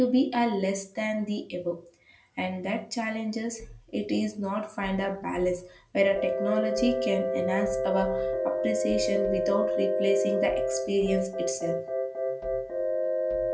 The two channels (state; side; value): identical; both; correlation 1.00